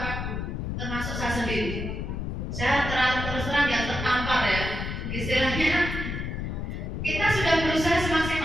guru, termasuk saya sendiri. Saya terus terang yang tertampar ya, istilahnya kita sudah berusaha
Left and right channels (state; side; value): noise; left; rumble, 4 dB below the sound